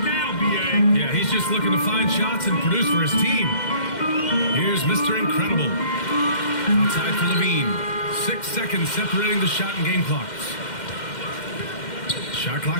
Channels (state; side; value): late; right; 2.1 ms